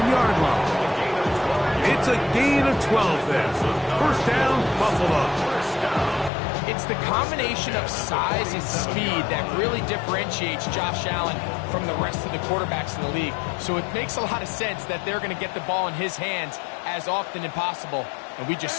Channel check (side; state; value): right; drops out; at 6.3 s